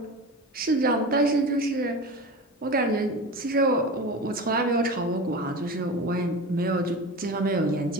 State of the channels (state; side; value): normal; both; correlation 0.30